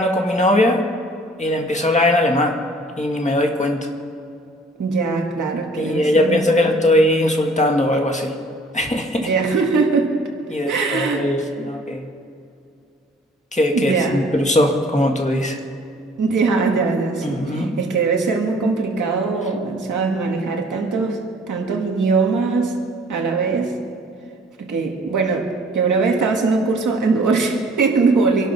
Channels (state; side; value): normal; both; correlation 0.54